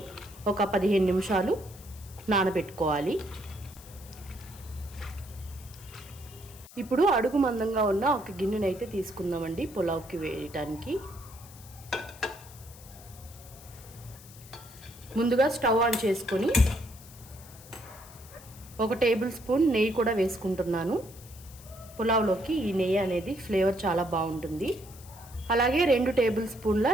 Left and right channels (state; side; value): noise; left; hiss, 20 dB below the sound